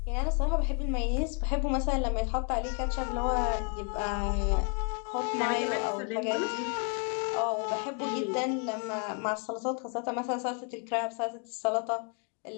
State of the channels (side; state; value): right; quieter; 39.9 dB